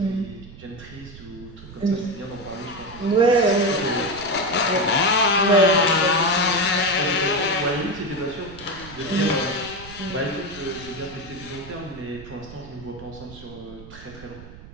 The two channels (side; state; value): right; noise; rumble, 17 dB below the sound